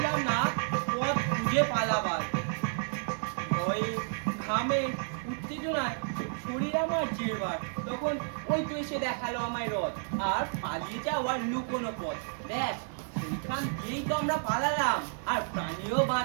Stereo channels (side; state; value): left; silent; digital silence